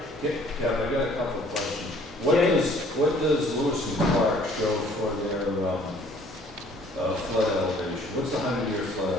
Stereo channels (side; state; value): both; normal; correlation 0.57